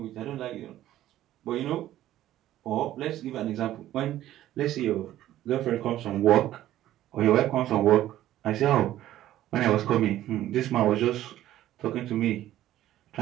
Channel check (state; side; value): quieter; left; 13.5 dB